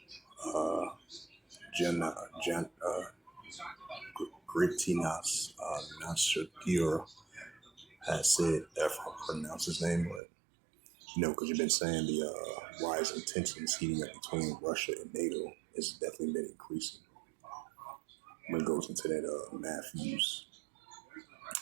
Gritinas Nausėda has said, if I pronounce his name, but because you've been saying the rising tensions heating up between Russia and NATO has definitely been increasing. When it goes into that Matthew's,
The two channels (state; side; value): drops out; left; at 10.2 s